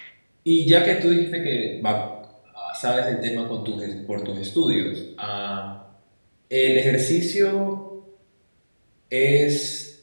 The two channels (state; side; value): inverted; both; correlation -1.00